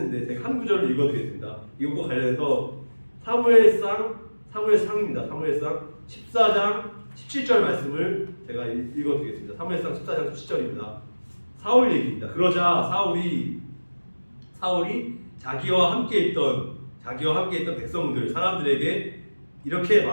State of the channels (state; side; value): inverted; both; correlation -1.00